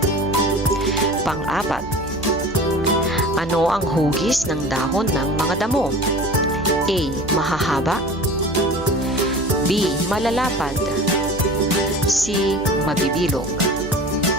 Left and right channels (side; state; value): right; noise; hum, 14 dB below the sound